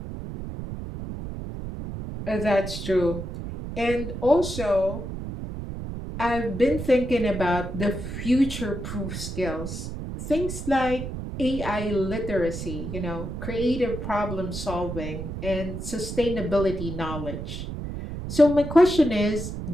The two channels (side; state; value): right; noise; rumble, 7 dB below the sound